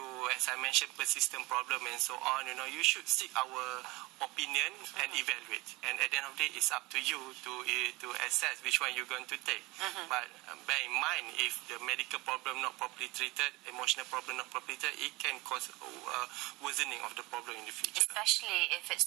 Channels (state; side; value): quieter; left; 22.5 dB